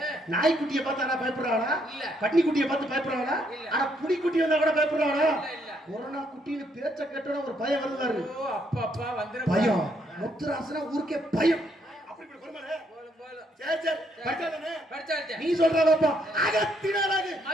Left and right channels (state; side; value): normal; both; correlation 0.72